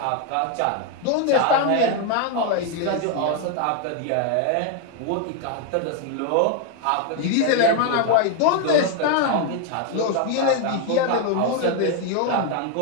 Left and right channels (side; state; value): both; different; correlation 0.01